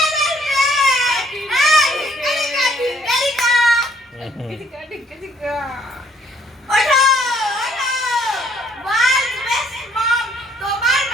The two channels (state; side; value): normal; both; correlation 0.64